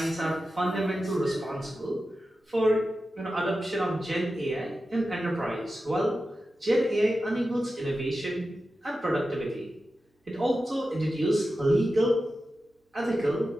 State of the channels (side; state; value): both; normal; correlation 0.92